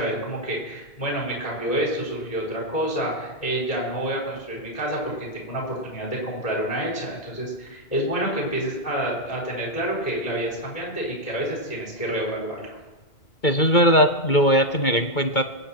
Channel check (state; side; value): late; right; 2.2 ms